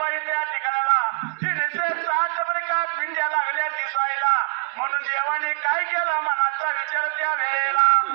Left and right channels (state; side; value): silent; left; 63 dB below the other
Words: इथे या ठिकाणाला सात का पिंड्या लागल्या दिसायला म्हणून देवाने काय केलं मनाचा विचार त्या वेळेला